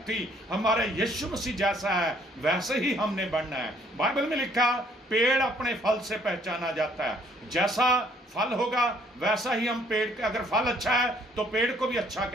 थी। हमारे यीशु मसीह जैसा है वैसे ही हमने बनना है। बाइबल में लिखा पेड़ अपने फल से पहचाना जाता है, जैसा फल होगा वैसा ही हम पेड़ के, अगर फल अच्छा है तो पेड़ को भी अच्छा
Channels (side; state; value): both; normal; correlation 0.63